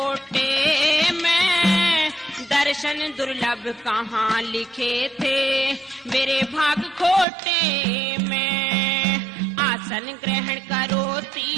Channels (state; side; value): drops out; left; at 7.2 s